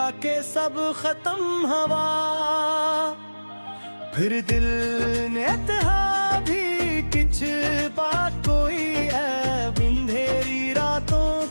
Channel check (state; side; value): inverted; both; correlation -1.00